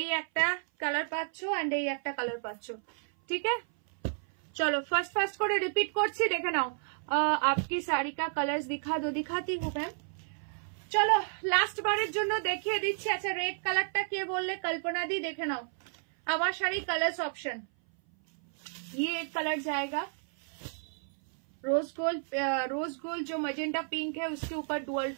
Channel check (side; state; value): left; silent; 57 dB below the other